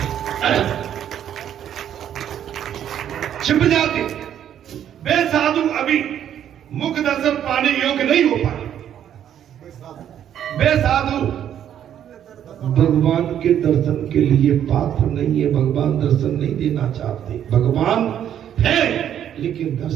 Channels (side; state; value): left; quieter; 10.0 dB